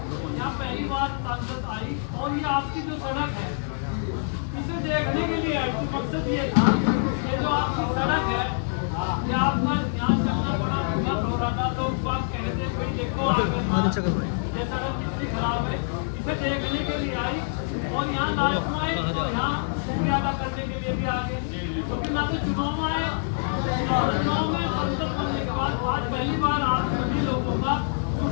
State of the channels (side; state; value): right; silent; digital silence